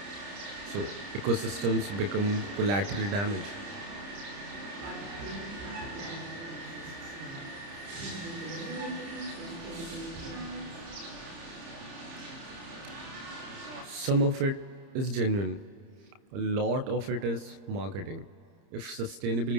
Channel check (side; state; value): left; late; 30 ms